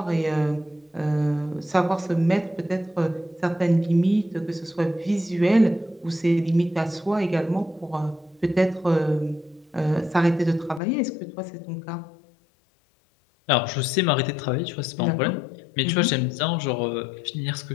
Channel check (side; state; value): right; drops out; at 10.8 s